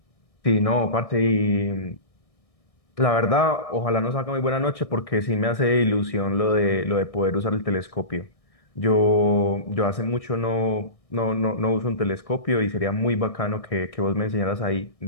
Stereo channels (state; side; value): late; right; 1.6 ms